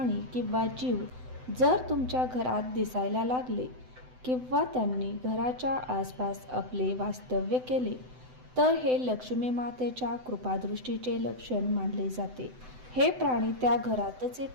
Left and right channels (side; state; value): left; late; 7.9 ms